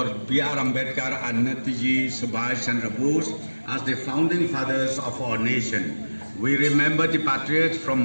B.R. Ambedkar and Netaji Subhash Chandra Bose as the founding fathers of our nation. We remember the patriots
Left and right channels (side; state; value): both; inverted; correlation -1.00